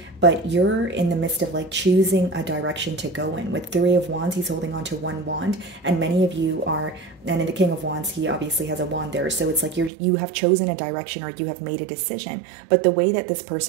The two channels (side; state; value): left; drops out; at 9.9 s